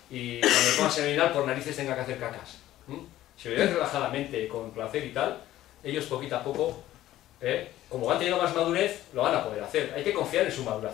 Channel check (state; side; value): quieter; right; 14.1 dB